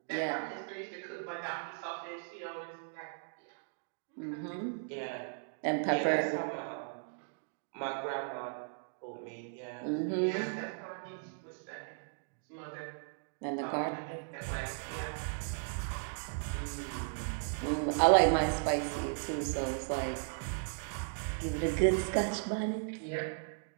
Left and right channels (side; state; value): left; silent; digital silence